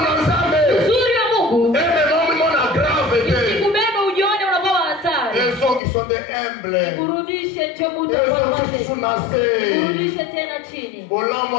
na nzambe. Uzuri ya Mungu. Ebe momi mona grave te. Isikubebe ujione unakuwa hatari. Ezo qui sont des humbles. Kurudishe chomuta kwa wale. Kurudishe tena chini. Bolamu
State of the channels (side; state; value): right; drops out; at 5.8 s